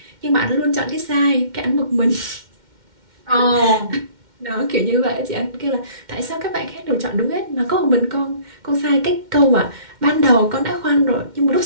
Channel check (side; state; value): left; late; 2.1 ms